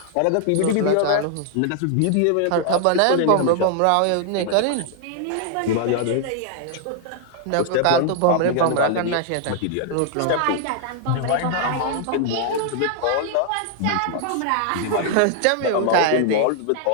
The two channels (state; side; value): different; both; correlation 0.00